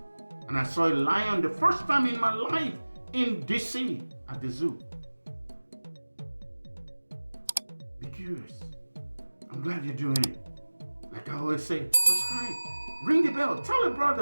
And I saw a lion the first time in my life in DC at the zoo. Be curious. I'm glad you're doing it. Like I always say, subscribe. Ring the bell. Tell a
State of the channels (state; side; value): inverted; both; correlation -1.00